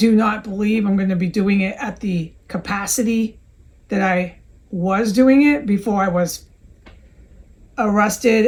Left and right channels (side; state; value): both; identical; correlation 1.00